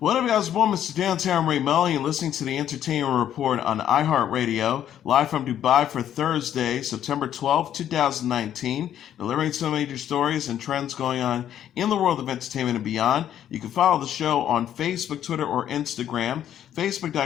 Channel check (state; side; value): quieter; right; 10.5 dB